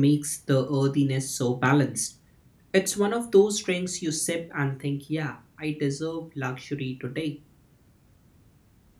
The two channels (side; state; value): both; identical; correlation 1.00